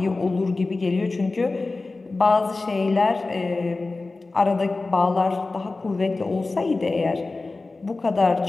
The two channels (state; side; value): quieter; right; 3.5 dB